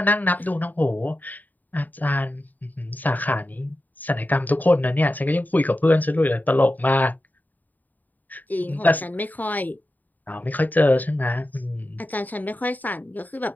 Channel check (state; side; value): late; right; 0.085 ms